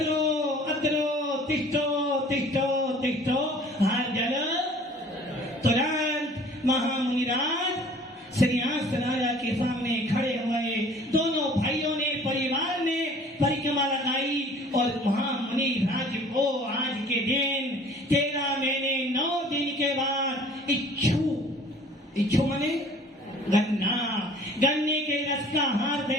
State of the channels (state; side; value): normal; both; correlation 0.51